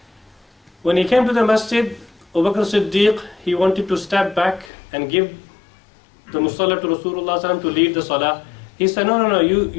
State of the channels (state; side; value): drops out; right; at 4.7 s